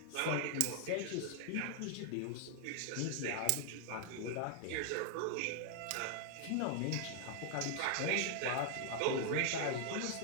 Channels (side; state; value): both; different; correlation 0.00